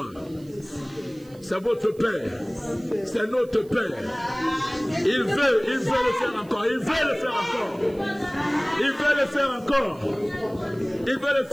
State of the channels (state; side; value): noise; right; hiss, 28 dB below the sound